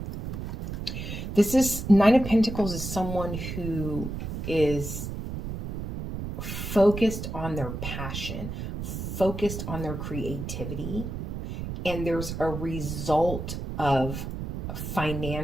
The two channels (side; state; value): right; noise; rumble, 6 dB below the sound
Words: Nine of Pentacles is someone who is focused on their passion, focused on their creativity, and there's a result of